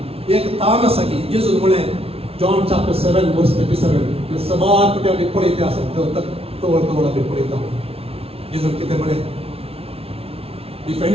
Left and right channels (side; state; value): left; late; 0.28 ms